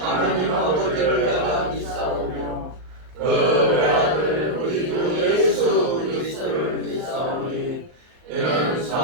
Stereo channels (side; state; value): left; late; 39 ms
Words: 아버지를 내가 믿사오며 그 외아들 우리 주 예수 그리스도를 믿사오니 이는